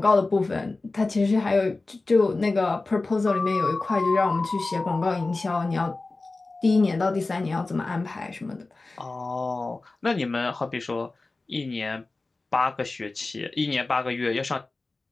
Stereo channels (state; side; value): quieter; right; 3.4 dB